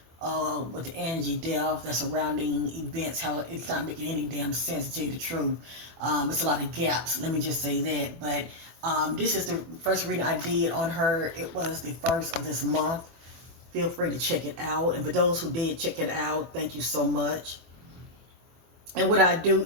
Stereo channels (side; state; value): left; late; 24 ms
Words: with the Angie death, the surrounding events, how it's not making any damn sense, to tell you the truth. It's a lot of gaps, let me just say that. But this is the first reading I did on her. It was the first of this month. Feel free to check it out. And for those who did check it out, thank you so much. And what I do